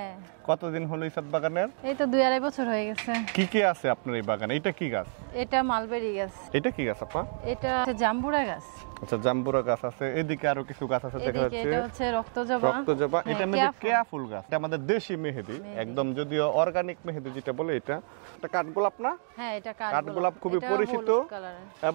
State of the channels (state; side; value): silent; left; digital silence